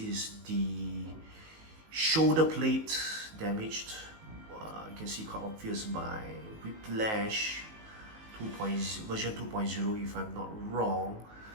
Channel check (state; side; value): late; left; 19 ms